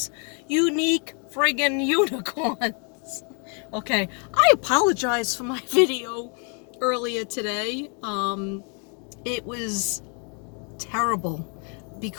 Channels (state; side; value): quieter; right; 38.8 dB